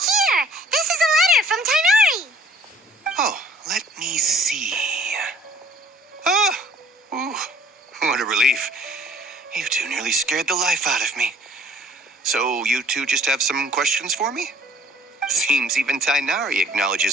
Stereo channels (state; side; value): normal; both; correlation 0.55